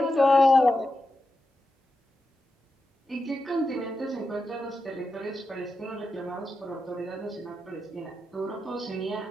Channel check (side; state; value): both; normal; correlation 0.89